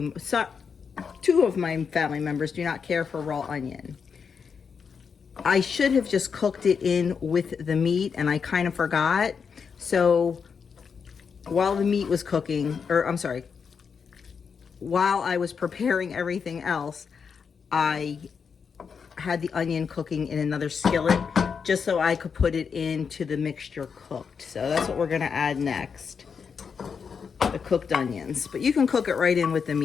much. So, two of my family members do not care for raw onion. I should have just cooked it in with the meat, and I kind of forgot. So while the meat was cooking, or I'm sorry, while I was preparing everything else, I had the onion cooking in another skillet just so I could put it into the mixture cooked. So that's what we're gonna add next, the cooked onions. But you can cook it right in with the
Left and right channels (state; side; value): quieter; right; 6.1 dB